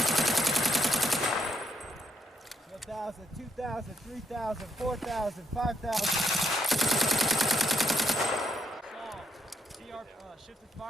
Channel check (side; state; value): both; normal; correlation 0.77